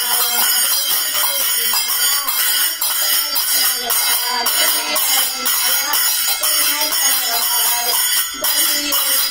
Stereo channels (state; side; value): identical; both; correlation 1.00